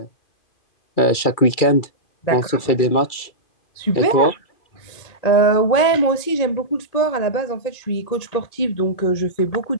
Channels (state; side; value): late; right; 2.3 ms